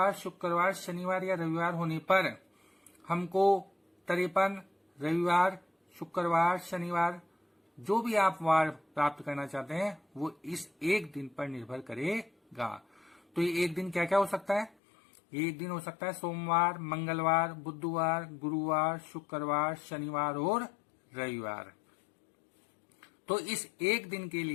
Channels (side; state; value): right; drops out; at 14.8 s